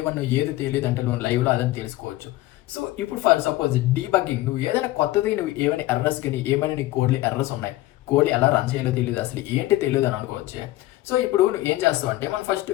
1 ఏది తెలియదు అంటే నువ్వు లైవ్లో అదని తెలుసుకోవచ్చు. సో ఇప్పుడు ఫర్ సపోజ్ డీబగ్గింగ్, నువ్వు ఏదైనా కొత్తది, నువ్వు ఏమైనా ఎర్రర్స్ కానీ ఏమైనా నీ కోడ్లో ఎర్రర్స్ ఉన్నాయి, కోడ్ ఎలా రన్ చేయాలో తెలియదు, అసలు ఏంటి తెలియదు అని అనుకోవచ్చు. సో ఇప్పుడు నువ్వు ఏం చేస్తావు అంటే మనం ఫస్ట్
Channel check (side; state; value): right; quieter; 16.9 dB